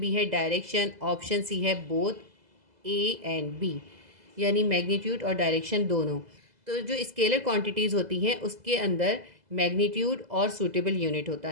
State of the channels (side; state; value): left; late; 2.0 ms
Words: है डायरेक्शन, ऑप्शन सी है बोथ ए एंड बी, यानी मैग्नीट्यूड और डायरेक्शन दोनों। तो जो स्केलर क्वांटिटीज़ होती हैं उसके अंदर मैग्नीट्यूड और सूटेबल यूनिट होता